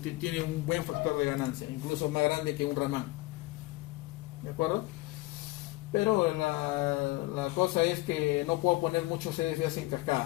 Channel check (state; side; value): quieter; right; 20.1 dB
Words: tiene un buen factor de ganancia, incluso más grande que un Raman. ¿De acuerdo? Pero la cosa es que no puedo poner muchos CDFAs en